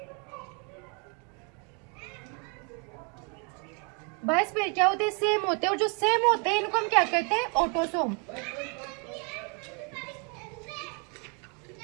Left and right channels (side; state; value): left; quieter; 35.2 dB